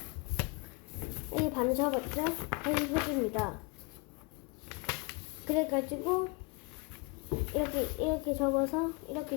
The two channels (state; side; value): quieter; right; 29.2 dB